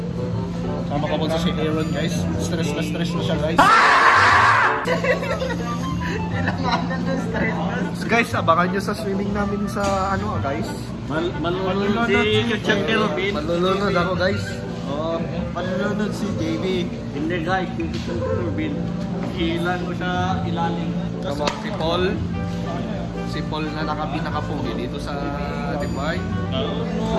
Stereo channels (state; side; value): identical; both; correlation 1.00